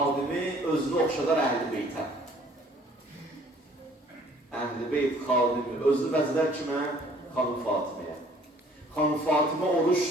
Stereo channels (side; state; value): both; normal; correlation 0.56